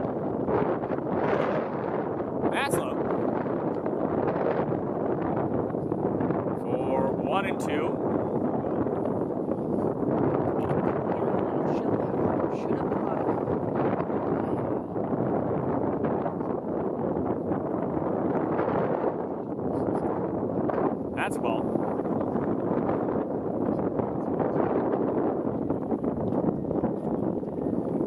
That's low. For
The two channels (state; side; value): identical; both; correlation 1.00